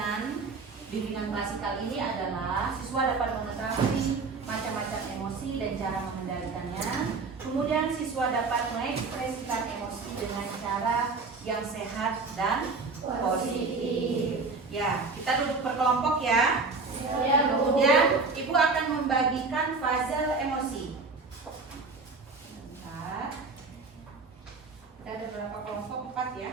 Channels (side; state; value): left; quieter; 4.2 dB